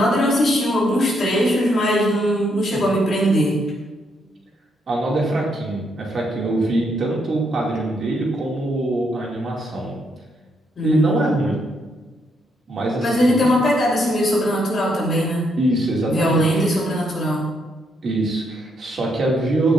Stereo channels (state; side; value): normal; both; correlation 0.76